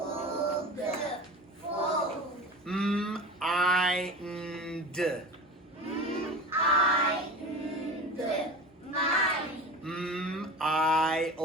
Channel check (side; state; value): both; normal; correlation 0.32